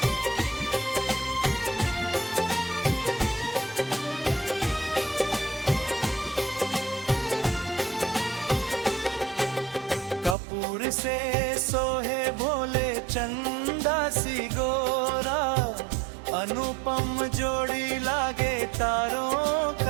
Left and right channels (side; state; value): left; drops out; at 10.4 s